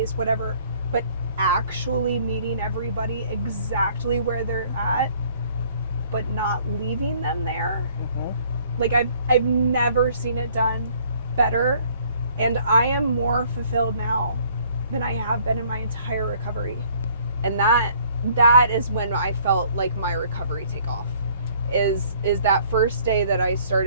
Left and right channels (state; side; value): inverted; both; correlation -0.59